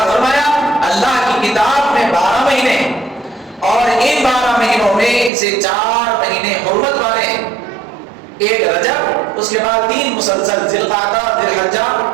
فرمایا، اللہ کی کتاب میں 12 مہینے ہیں، اور ان 12 مہینوں میں سے 4 مہینے حرمت والے ہیں، ایک رجب، اس کے بعد 3 مسلسل ذی القعدہ، ذی الحجہ،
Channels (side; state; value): left; drops out; at 5.3 s